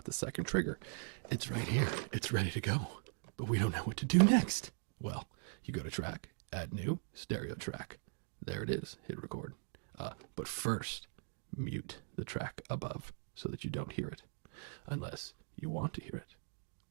the second trigger. It's right here. It's ready to go. But we don't know what to do next. Well, you go to track, add new, stereo track. There it is. Hit record. But first, mute the track above so that you don't hear it. Unless you want to hear it.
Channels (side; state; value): left; silent; 51 dB below the other